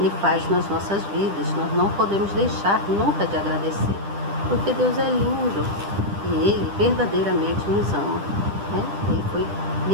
faz nas nossas vidas. Nós não podemos deixar nunca de agradecer, porque Deus é lindo e Ele verdadeiramente nos ama, né?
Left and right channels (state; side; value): late; left; 10 ms